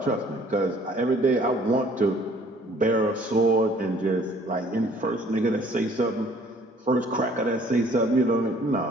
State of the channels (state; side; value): normal; both; correlation 0.57